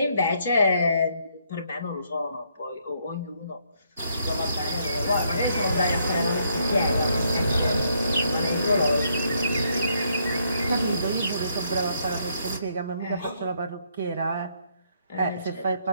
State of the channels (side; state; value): both; inverted; correlation -0.72